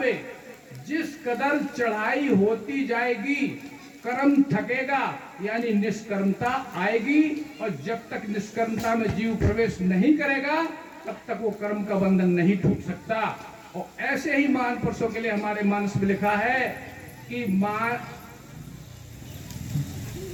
जिस कदर चढ़ाई होती जाएगी कर्म थकेगा, यानी निष्कर्मता आएगी। और जब तक निष्कर्मता में जीव प्रवेश नहीं करेगा तब तक वो कर्म का बंधन नहीं टूट सकता। और ऐसे ही महान पुरुषों के लिए हमारे मानस में लिखा है कि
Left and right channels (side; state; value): both; identical; correlation 1.00